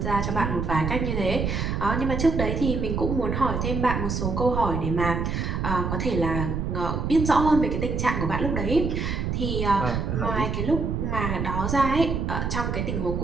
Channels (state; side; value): noise; right; rumble, 1 dB below the sound